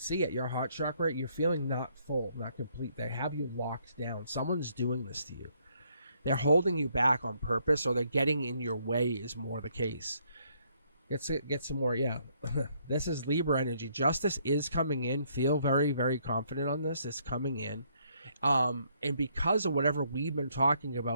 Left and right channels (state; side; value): inverted; both; correlation -0.69